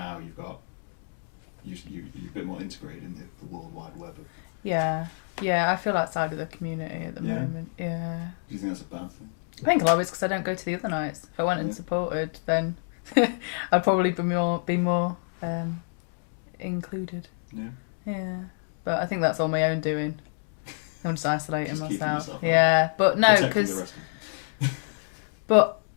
you're a bit more integrated in the World Wide Web of... Yeah. Yeah, I feel outside of the community at the moment. Yeah. Do you think that's a bad thing? I think a lot of it's because I don't go to the other nights. If I went and supported, then I'd probably be more included. Yeah. Yeah. But I think that's all my own doing. I'm just isolating just myself. Keeping yourself out. Yeah, but no, protecting the rest of them. But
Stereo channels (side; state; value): right; silent; digital silence